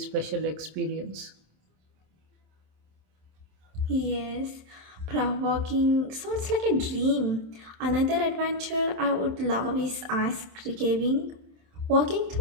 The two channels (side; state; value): left; late; 27 ms